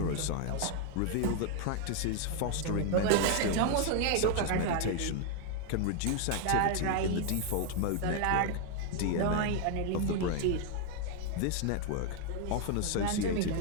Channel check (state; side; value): different; both; correlation 0.00